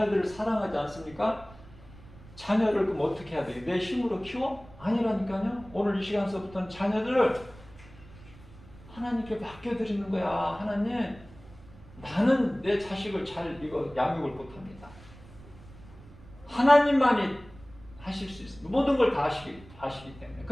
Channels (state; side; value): noise; right; rumble, 21 dB below the sound